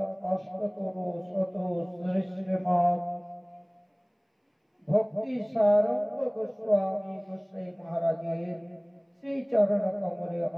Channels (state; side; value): identical; both; correlation 1.00